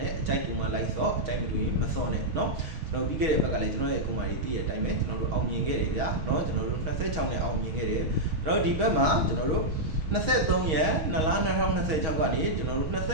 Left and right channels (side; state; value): left; late; 6.3 ms